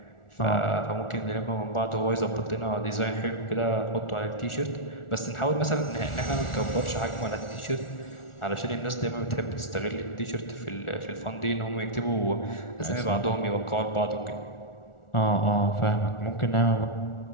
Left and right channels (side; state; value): right; late; 1.4 ms